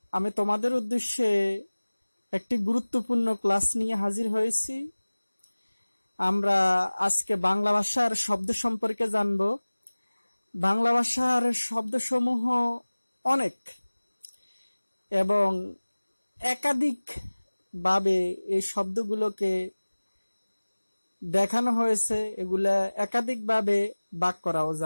আমি তোমাদের উদ্দেশ্যে একটি গুরুত্বপূর্ণ ক্লাস নিয়ে হাজির হয়েছি। আমরা আজকে বাংলা ভাষার শব্দ সম্পর্কে জানব। বাংলা ভাষার শব্দসমূহ অনেক এবং একাধিক ভাবে এই শব্দগুলোকে দেখানো হয়েছে। এগুলা একাধিক ভাবে ভাগ করাও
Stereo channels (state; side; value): inverted; both; correlation -1.00